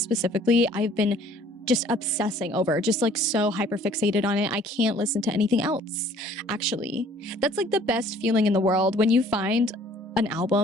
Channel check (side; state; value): both; normal; correlation 0.55